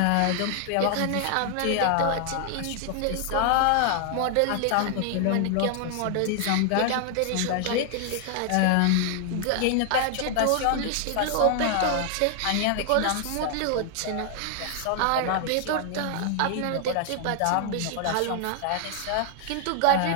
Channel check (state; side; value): different; both; correlation 0.00